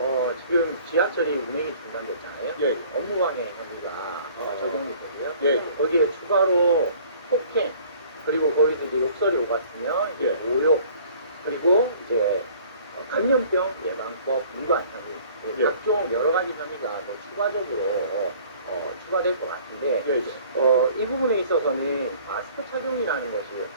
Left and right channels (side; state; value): both; inverted; correlation -0.53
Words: 지금 지하철이 운행이 중단됐잖아요. 예. 업무방해 혐의가 적용이 되고요. 예. 거기에 추가로 폭행 그리고 거기서 이제 욕설이 오갔으면 이제 모욕 그리고 이제 감염병 예방법 위반 혐의 예. 각종 여러 가지 혐의가 더 추가적으로 추가될 것 같은데 예, 예. 이 부분에 있어서는 마스크 착용이라는 것이